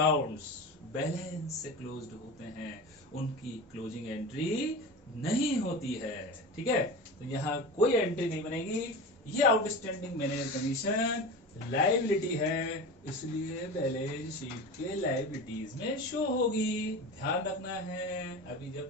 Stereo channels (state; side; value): normal; both; correlation 0.29